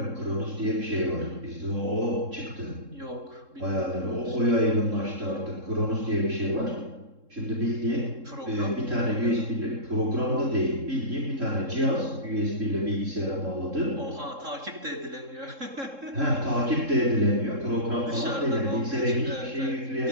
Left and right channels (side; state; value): left; late; 3.7 ms